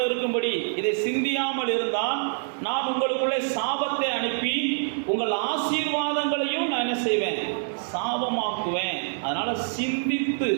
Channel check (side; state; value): left; silent; digital silence